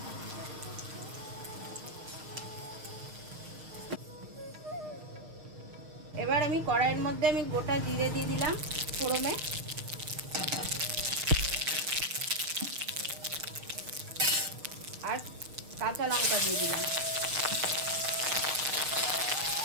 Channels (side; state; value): left; late; 6.8 ms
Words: এবার আমি কড়াইয়ের মধ্যে আমি গোটা জিরে দিয়ে দিলাম ফোড়নে, আর কাঁচা লঙ্কা দিয়ে দিলাম।